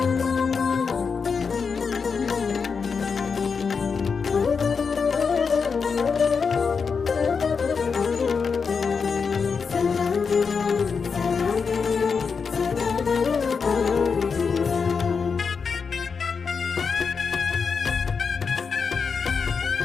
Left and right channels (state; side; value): quieter; right; 5.5 dB